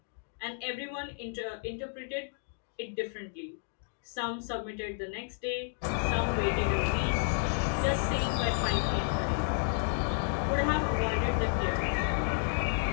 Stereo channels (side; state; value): right; silent; digital silence